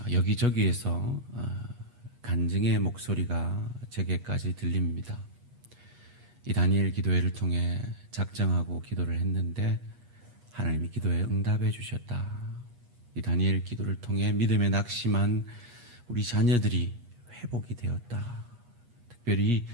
여기저기에서 간증의 목소리가 제게까지 들립니다. 이 다니엘 기도회를 통해 작정하고 기도를 했는데 하나님이 기도에 응답해 주셨다. 이 다니엘 기도를 통해 믿음에 낙심한 우리 자녀들이 회복이 되었다. 특별히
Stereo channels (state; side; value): late; left; 8.3 ms